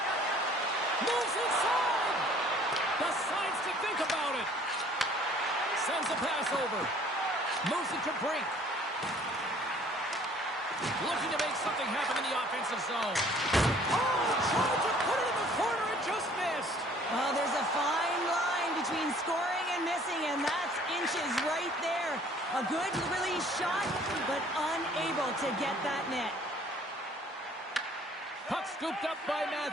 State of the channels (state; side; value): normal; both; correlation 0.55